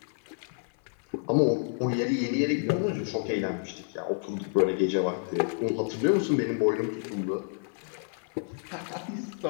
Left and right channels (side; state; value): right; silent; 58 dB below the other